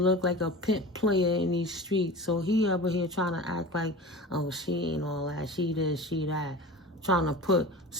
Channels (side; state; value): both; normal; correlation 0.34